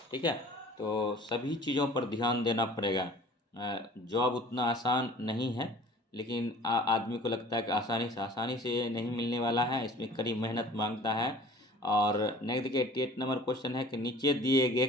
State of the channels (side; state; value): both; normal; correlation 0.47